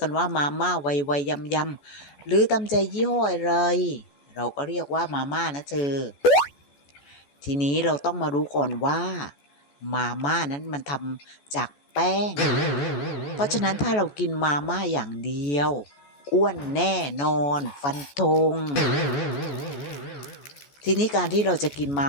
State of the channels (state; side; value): late; right; 14 ms